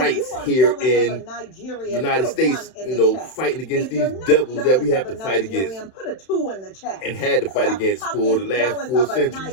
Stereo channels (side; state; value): right; late; 31 ms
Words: here in the United States, you know, fighting against these devils that we have to fight against put a 2 in the chat. And had to fight against for the last 4